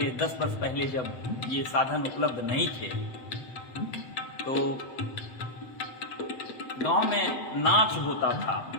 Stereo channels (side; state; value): right; late; 8.0 ms